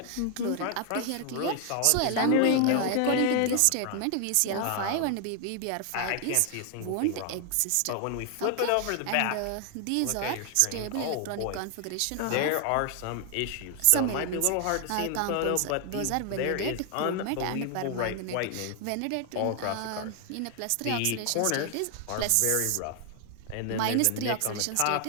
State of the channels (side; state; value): both; different; correlation 0.00